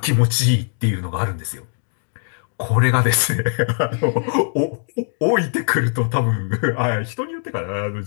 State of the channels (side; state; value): right; silent; digital silence